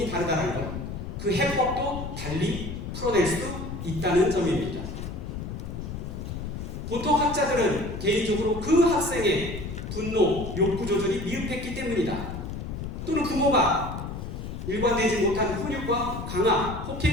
다르다는 것, 그 해법도 달리 풀어낼 수 있다는 점입니다. 보통 학자들은 개인적으로 그 학생의 분노, 욕구 조절이 미흡했기 때문이다. 또는 부모가 일관되지 못한 훈육과 강압,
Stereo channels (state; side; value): noise; left; rumble, 7 dB below the sound